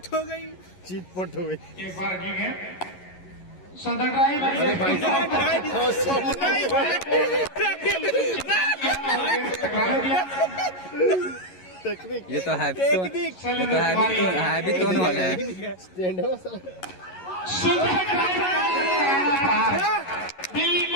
हो गई, चीट पट हो गई। एक बार की गेंद सुंदर ड्राइव, टेक्निक ये तो हैवी टोन वाला है। स्टैंड है वो सर।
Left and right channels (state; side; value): late; right; 11 ms